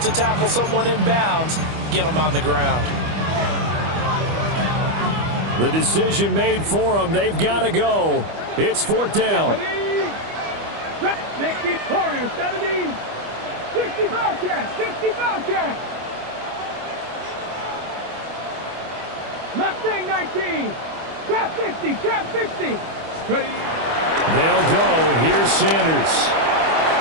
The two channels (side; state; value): left; late; 25 ms